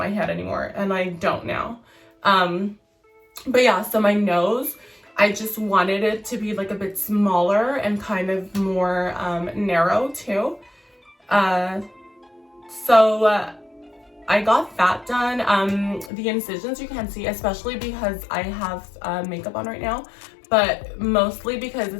head anymore, and I don't now. But yeah, so my nose, I just wanted it to be a bit smaller and kind of more narrow too. So I got that done. The incisions you can't see, especially because I have makeup on right now, but mostly because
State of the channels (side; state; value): right; drops out; at 16.1 s